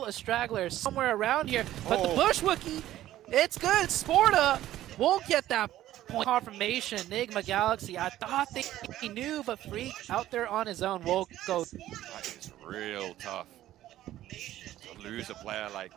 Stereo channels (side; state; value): left; quieter; 13.8 dB